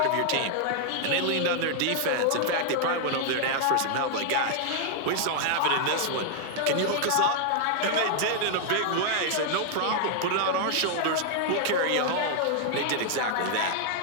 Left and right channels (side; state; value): both; different; correlation 0.00